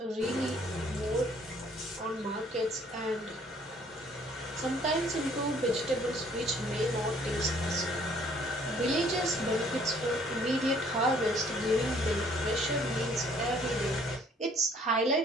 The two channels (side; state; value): both; normal; correlation 0.60